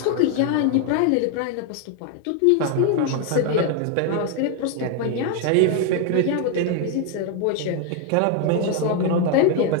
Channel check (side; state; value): both; different; correlation 0.01